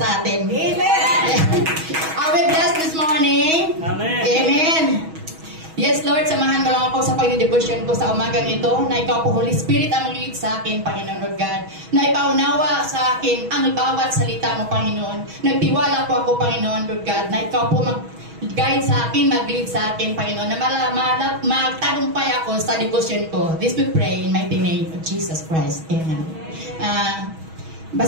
atin. Amen. Are we blessed this morning? Amen. Amen. Yes, Lord, samahan mo lang ako sa pag-devotion ko sa umagang ito na ikaw po, Holy Spirit, ang mag-lead sa akin, Panginoon Lord God. Na ipaunawa sa akin ang bawat salita mo, Panginoon. Nagtiwala po ako, Panginoon Lord God, na ikaw po mag-guide sa akin, mag-lead sa akin, Panginoon. Na magtagumpay ako sa devotion ko. This we pray in mighty name of Jesus Christ. Amen.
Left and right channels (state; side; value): late; left; 6.2 ms